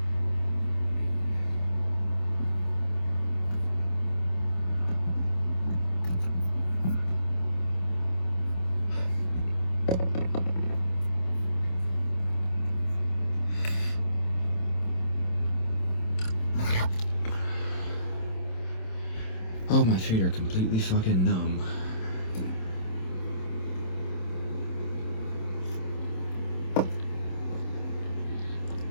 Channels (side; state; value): right; late; 27 ms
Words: Oh, my feet are completely fucking numb.